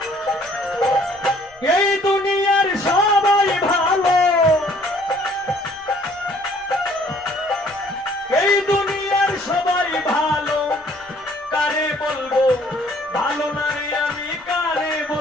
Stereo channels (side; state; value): left; noise; rumble, 29 dB below the sound